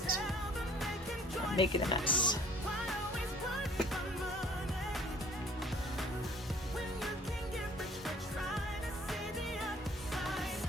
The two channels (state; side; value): normal; both; correlation 0.54